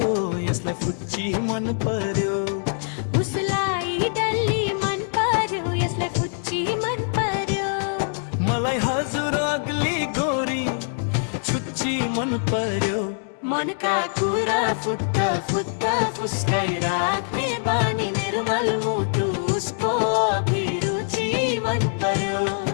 यसलाई फुच्ची मन पर्यो। उसलाई डल्ली मन पर्यो, यसलाई फुच्ची मन पर्यो। मलाई हजुर अग्ली गोरी छुच्ची मन पर्यो। मनका कुरा फुत्त फुत्त फुस्काइ राख्ने बानी निर्मल मुटु उसको अभिरुचि मन पर्यो।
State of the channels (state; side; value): silent; right; 63 dB below the other